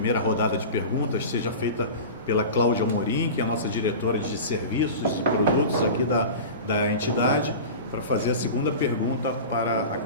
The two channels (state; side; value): inverted; both; correlation -0.31